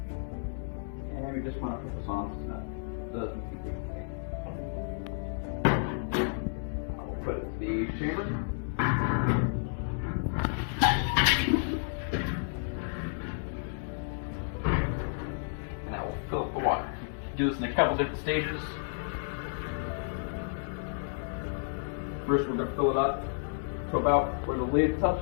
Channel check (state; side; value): silent; right; digital silence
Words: And we just want to put this on snug. It does need to be pretty tight. the chamber. And that will fill up the water. Do this in a couple different stages. First, we're going to fill it up to about where the lid